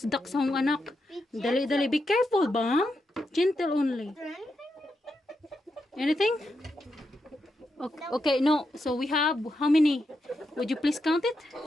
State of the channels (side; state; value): both; normal; correlation 0.85